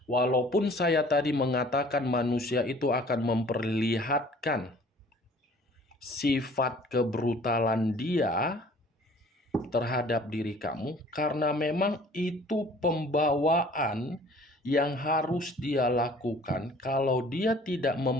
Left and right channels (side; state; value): both; normal; correlation 0.52